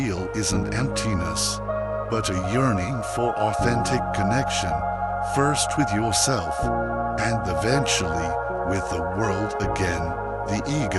isn't emptiness, but a yearning for authentic connection, first with yourself, and eventually with the world again, the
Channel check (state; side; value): identical; both; correlation 1.00